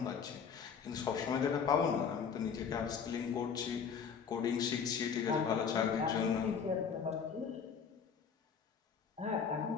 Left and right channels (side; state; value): right; quieter; 6.7 dB